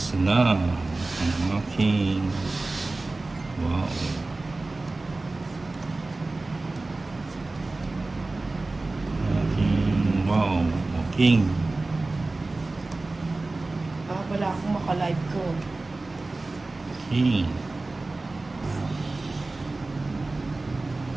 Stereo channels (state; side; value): quieter; left; 3.2 dB